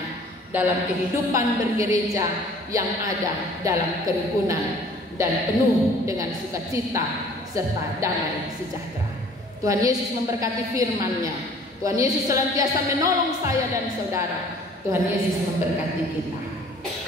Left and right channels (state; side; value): normal; both; correlation 0.52